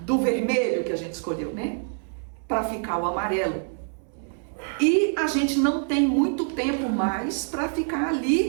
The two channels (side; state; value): left; silent; 61 dB below the other